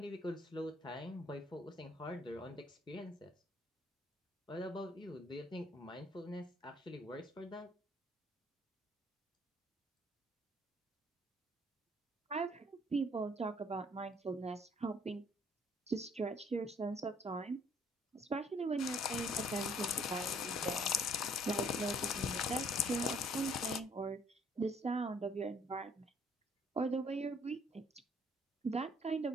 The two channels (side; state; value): both; normal; correlation 0.61